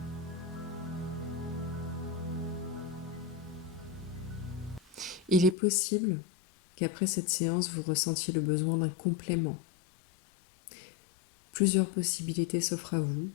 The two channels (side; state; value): right; drops out; at 5.6 s